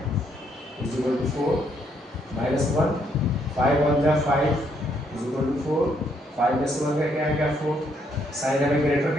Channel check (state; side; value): normal; both; correlation 0.72